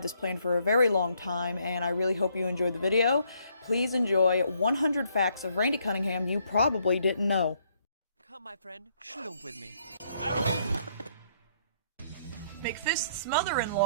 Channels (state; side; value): inverted; both; correlation -0.70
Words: this planned for a very long time, and I really hope you enjoy the video. Please enjoy 100 facts of Randy Cunningham you probably didn't know. Come, my friend, shoot with me. McFist's